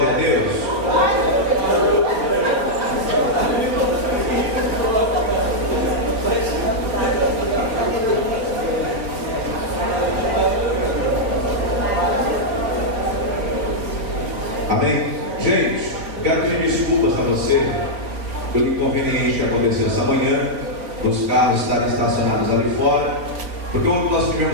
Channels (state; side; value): late; left; 4.6 ms